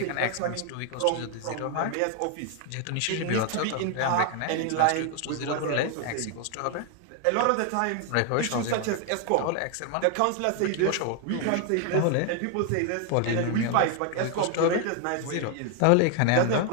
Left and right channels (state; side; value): different; both; correlation 0.01